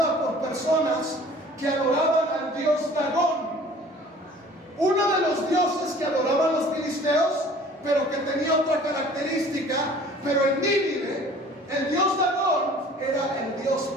por personas que adoraban al dios Dagón, uno de los dioses que adoraban los filisteos, pero que tenía otra característica. Pero en Nínive, el dios Dagón era el dios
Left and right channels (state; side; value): normal; both; correlation 0.49